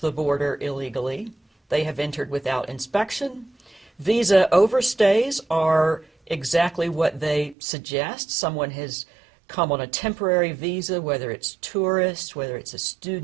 the border illegally. They have entered without inspection. Visa overstays are exactly what they suggest. Someone has come on a temporary visa, whether it's tourist, whether it's a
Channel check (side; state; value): left; drops out; at 7.6 s